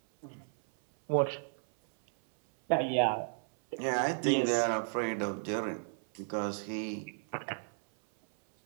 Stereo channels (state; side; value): silent; left; 56 dB below the other